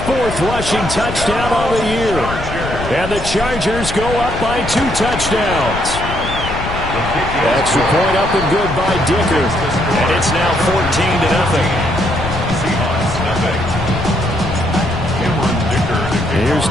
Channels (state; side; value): noise; left; rumble, 7 dB below the sound